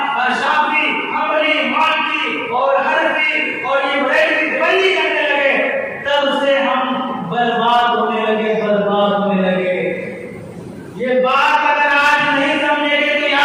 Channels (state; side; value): identical; both; correlation 1.00